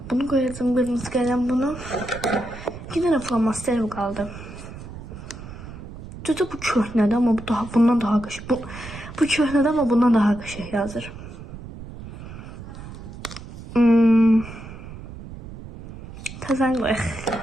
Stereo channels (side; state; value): right; noise; rumble, 13 dB below the sound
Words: Bunu koyacağım, kırmızı kalem bunu. 2 tane flomasterim kaldı. Düzdür, bu köhnədir ama bu daha, bundan daha qəşəng. Bu köhnədir ama bundan daha qəşəng yazır. Təzən qoyaq.